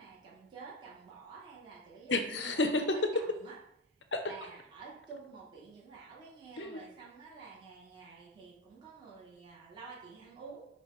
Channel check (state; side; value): normal; both; correlation 0.15